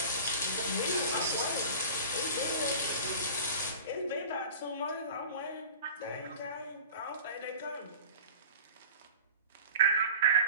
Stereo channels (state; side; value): inverted; both; correlation -0.39